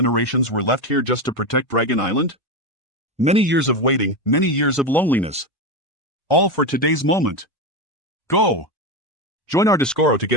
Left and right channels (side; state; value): both; normal; correlation 0.15